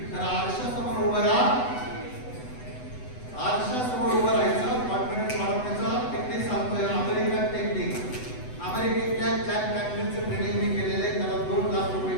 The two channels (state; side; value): late; right; 8.0 ms